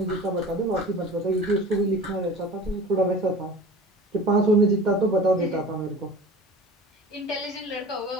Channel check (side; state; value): both; normal; correlation 0.39